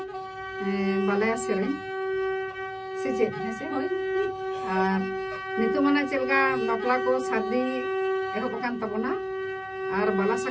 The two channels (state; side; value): identical; both; correlation 1.00